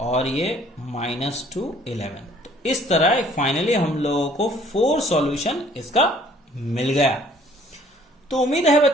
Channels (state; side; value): normal; both; correlation 0.58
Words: ये -2 11। तो इस तरह फाइनली हम लोगों को 4 सॉल्यूशन इसका मिल गया। तो उम्मीद है